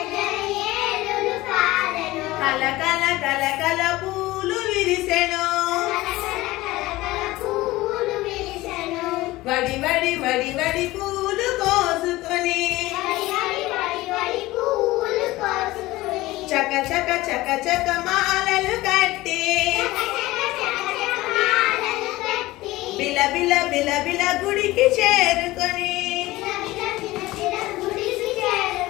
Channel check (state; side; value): quieter; right; 18.5 dB